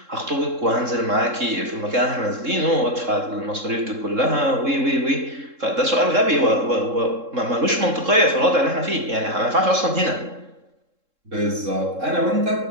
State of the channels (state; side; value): late; left; 3.7 ms